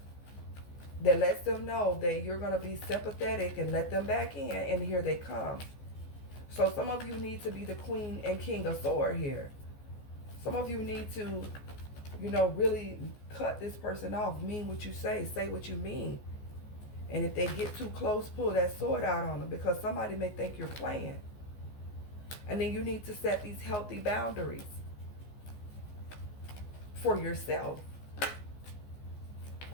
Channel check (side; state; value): right; late; 14 ms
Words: that lets them know that you're going to be sympathetic and let them back in, and here they come. So some of you need to be the queen and king of sword here. Some of you need to, you know, really cut this person off. Mean what you say what you mean. And if they get too close, pull that sword out on them, because somebody may think you're playing. And then you need to set these healthy boundaries for yourself.